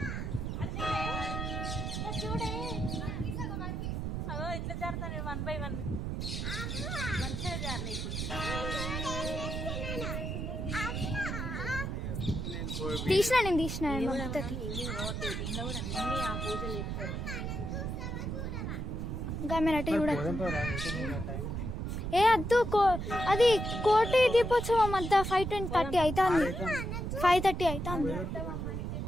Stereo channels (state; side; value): noise; right; rumble, 3 dB below the sound